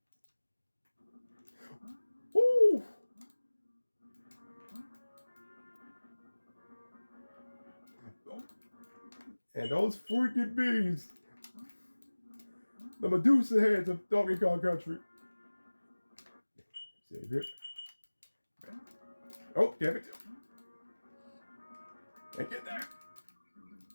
Woo. And those freaking bees. The Medusa heads of Donkey Kong Country. Save it. Oh, damn it. Can't get there.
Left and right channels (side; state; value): both; inverted; correlation -1.00